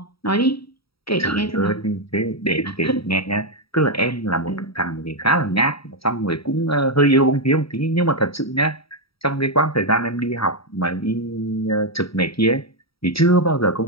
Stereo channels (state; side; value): late; right; 0.75 ms